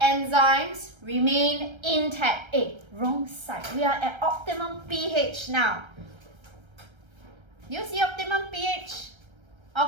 remain intact. Wrong side. We are at optimum pH now. You see optimum pH?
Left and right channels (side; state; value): left; late; 1.3 ms